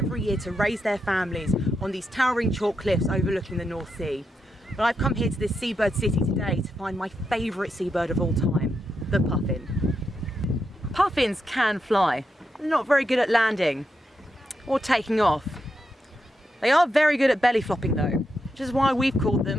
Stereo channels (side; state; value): both; normal; correlation 0.84